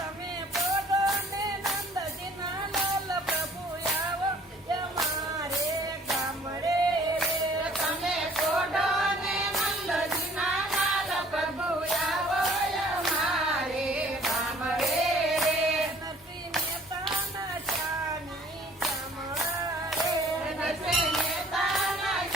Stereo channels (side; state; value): both; normal; correlation 0.55